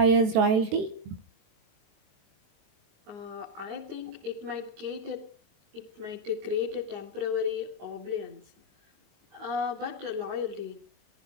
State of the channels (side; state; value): left; late; 23 ms